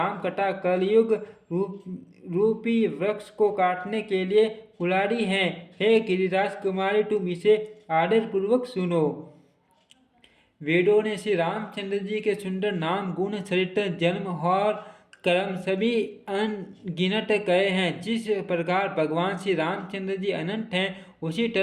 कथा कलयुग रूपी वृक्ष को काटने के लिए कुल्हाड़ी है। हे गिरिराज कुमारी, तुम इसे आदर पूर्वक सुनो। वेदों ने श्री रामचंद्र जी के सुंदर नाम, गुण, चरित्र, जन्म और कर्म सभी अनगिनत कहे हैं। जिस प्रकार भगवान श्री रामचंद्र जी अनंत हैं, उसी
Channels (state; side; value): identical; both; correlation 1.00